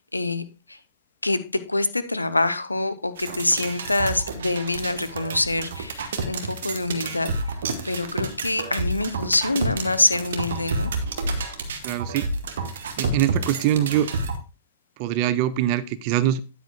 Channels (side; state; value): both; inverted; correlation -0.63